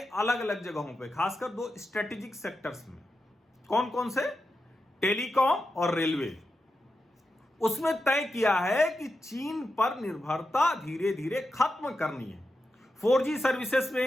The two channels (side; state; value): both; normal; correlation 0.89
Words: अलग जगहों पे, खासकर 2 स्ट्रेटेजिक सेक्टर्स में, कौन कौन से, टेलीकॉम और रेलवे, उसमें तय किया है कि चीन पर निर्भरता धीरे धीरे खत्म करनी है। 4G सर्विसेज